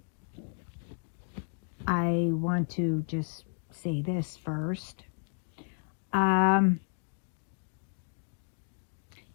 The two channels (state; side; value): silent; right; digital silence